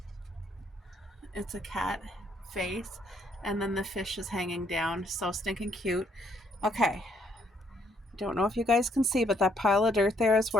It's a cat face, and then the fish is hanging down. So stinking cute. Okay. Don't know if you guys can see, but that pile of dirt there is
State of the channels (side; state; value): both; normal; correlation 0.69